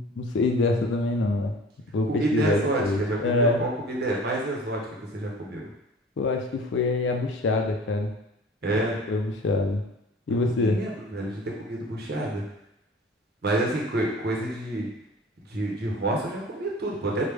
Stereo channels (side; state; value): both; normal; correlation 0.43